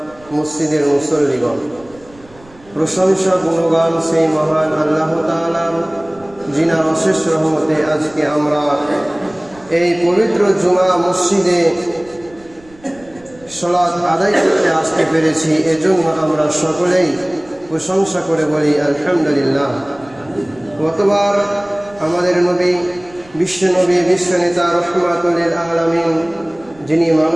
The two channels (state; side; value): noise; right; rumble, 26 dB below the sound